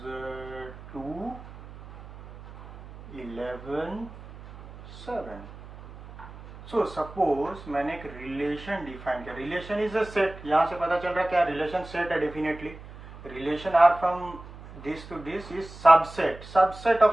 2 11 7। सो सपोज मैंने एक रिलेशन डिफाइन किया, रिलेशन इज अ सेट, यहां से पता चल रहा है क्या, रिलेशन सेट है definitely. Relation R from this to this is subset, subset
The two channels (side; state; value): right; noise; hum, 16 dB below the sound